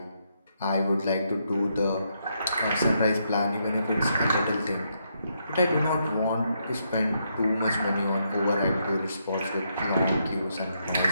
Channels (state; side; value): inverted; both; correlation -0.78